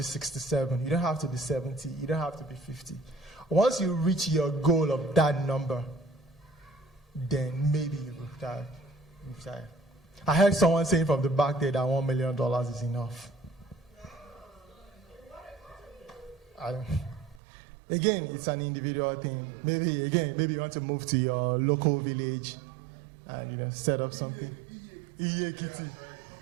67, you don't have to be 70, you don't have to be 50. Once you reach your goal of that number, then maybe you retire. I heard someone saying from the back there that $1 million is enough. Again, it's an individual thing. Maybe you want to move to your local village and set up something. Yeah,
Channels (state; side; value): drops out; left; at 17.4 s